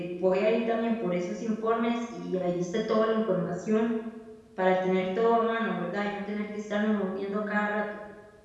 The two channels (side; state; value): both; identical; correlation 1.00